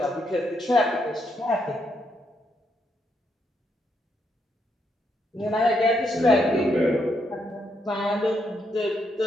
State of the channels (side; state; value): both; normal; correlation 0.78